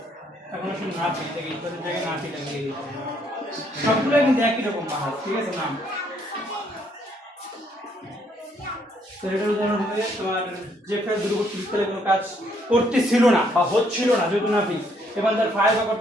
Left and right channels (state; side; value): normal; both; correlation 0.69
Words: এখন আসলে নাফি থেকে ইজাফের জায়গায় নাফি লাগিয়ে দিতে হবে, সবগুলো কিন্তু একই রকম বাহাজ, ঠিক আছে নাম। তো এটার উদাহরণ হবে তোমার যে ফেল দুর্বৃত্তকালে কোনো কাজ করতেছিল না বা হচ্ছিল না যেহেতু নাফি এবং তার ফাইল বা